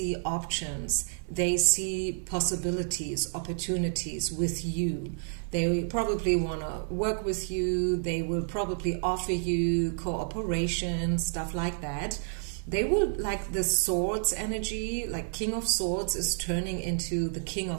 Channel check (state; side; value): silent; left; 58 dB below the other